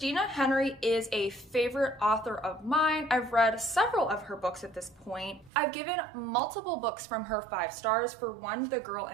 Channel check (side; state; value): left; drops out; at 5.5 s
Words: Henry is a favorite author of mine. I've read several of her books at this point. I've given multiple books from her 5 stars. For one, The Girl